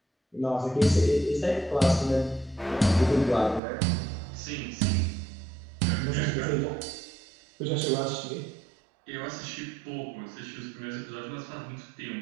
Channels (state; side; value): drops out; left; at 3.6 s